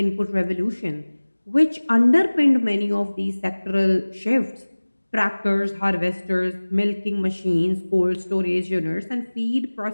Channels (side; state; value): both; inverted; correlation -1.00